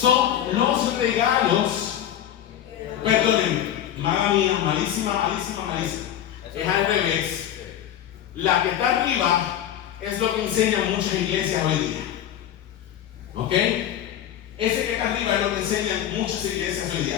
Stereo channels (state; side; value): quieter; right; 11.0 dB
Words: los regalos. Perdónenme, mala mía, malísima. Es al revés. La que está arriba es lo que enseñan muchas iglesias hoy día. ¿Ok? Ese que está arriba es lo que enseñan muchas iglesias hoy